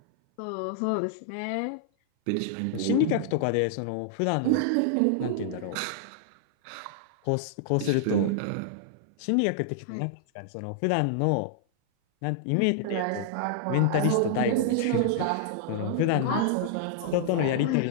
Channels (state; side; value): different; both; correlation -0.01